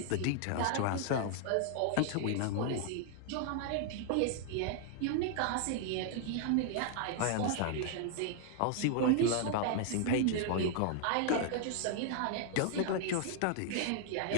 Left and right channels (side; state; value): both; different; correlation 0.00